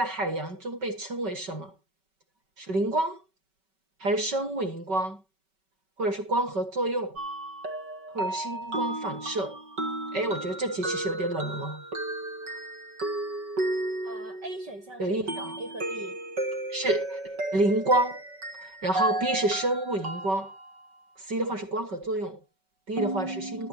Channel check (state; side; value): late; left; 5.2 ms